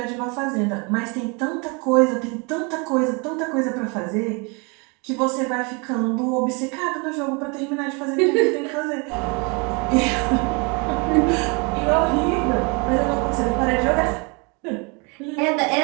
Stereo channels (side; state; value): left; quieter; 31.5 dB